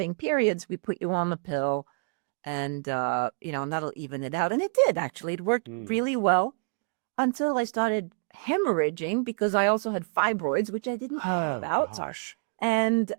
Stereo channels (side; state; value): left; quieter; 38.5 dB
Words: periods, we put you on the pill, and and that'll even it out. And it did, actually. It worked Mm. really well until I started hemorrhaging, because I also had fibroids, which I didn't know Oh about. gosh. And